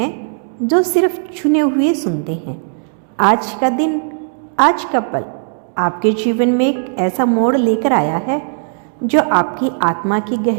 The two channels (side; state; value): left; silent; 68 dB below the other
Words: जो सिर्फ चुने हुए सुनते हैं। आज का दिन, आज का पल आपके जीवन में एक ऐसा मोड़ लेकर आया है जो आपकी आत्मा की